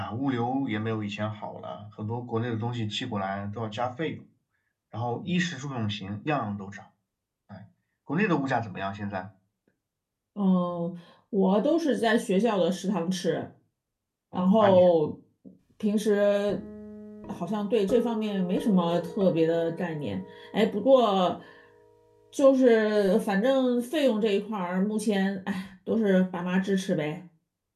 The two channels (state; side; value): identical; both; correlation 1.00